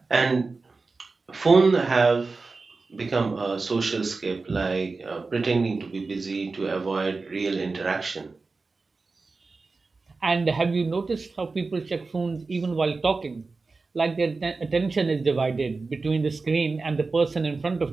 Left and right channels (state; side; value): quieter; left; 4.0 dB